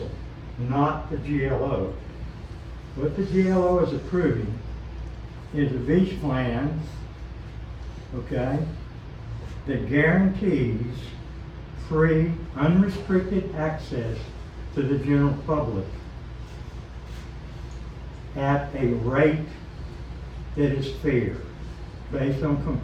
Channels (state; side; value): identical; both; correlation 1.00